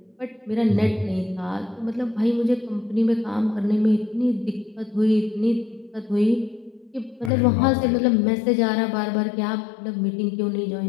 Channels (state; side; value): drops out; right; at 7.3 s